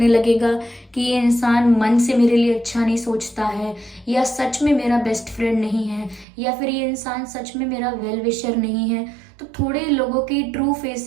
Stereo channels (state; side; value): drops out; left; at 6.2 s